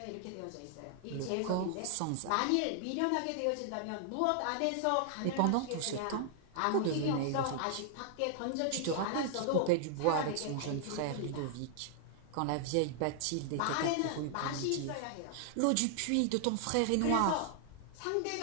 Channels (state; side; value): different; both; correlation 0.00